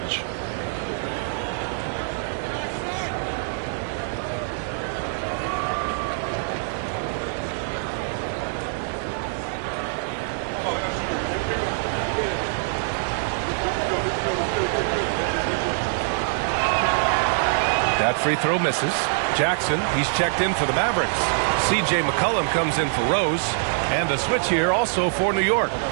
That free throw misses. Jackson, he's checked in for the Mavericks. C.J. McCollum comes in for Rose. And a switch here also for New York.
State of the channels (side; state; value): left; silent; digital silence